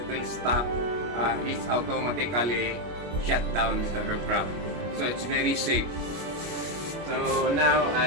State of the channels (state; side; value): late; left; 25 ms